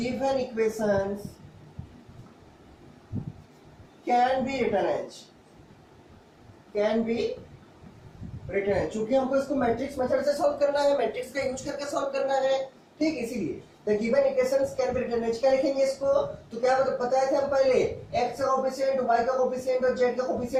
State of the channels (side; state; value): both; identical; correlation 1.00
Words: equations can be written as, चूंकि हमको इसको मैट्रिक्स मेथड से सॉल्व करना है, मैट्रिक्स का यूज करके सॉल्व करना है, ठीक। इसीलिए the given equations can be written as. क्या लिखेंगे इसको, तो क्या बताए थे हम पहले, x का कोएफिशिएंट, y का कोएफिशिएंट और z का